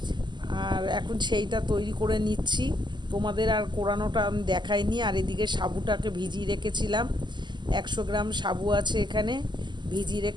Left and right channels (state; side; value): late; left; 0.21 ms